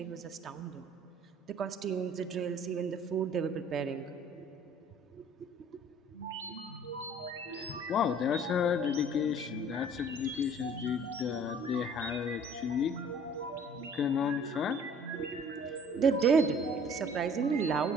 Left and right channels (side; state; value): both; normal; correlation 0.52